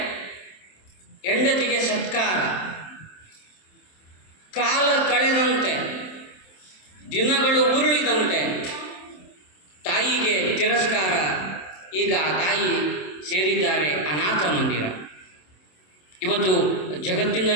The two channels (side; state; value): right; late; 27 ms